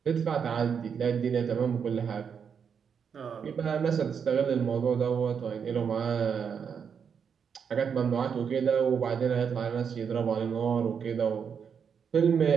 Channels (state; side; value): quieter; left; 6.9 dB